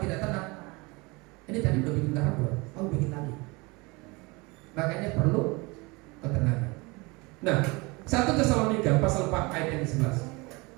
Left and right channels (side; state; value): left; quieter; 25.8 dB